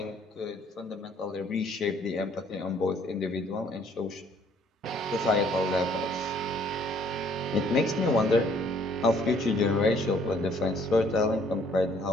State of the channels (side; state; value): both; normal; correlation 0.61